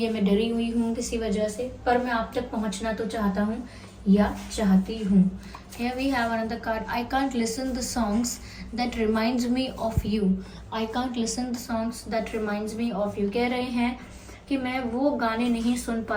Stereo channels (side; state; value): both; identical; correlation 1.00